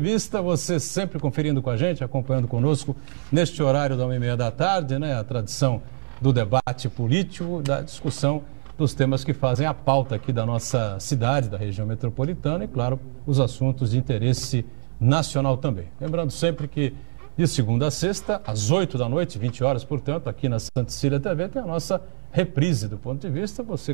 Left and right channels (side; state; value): left; silent; 59 dB below the other